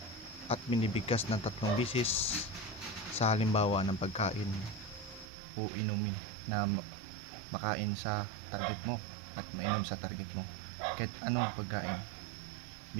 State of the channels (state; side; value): drops out; left; at 5.2 s